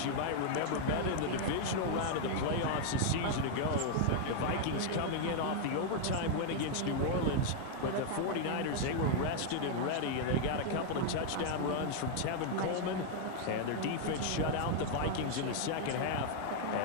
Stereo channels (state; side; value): different; both; correlation 0.00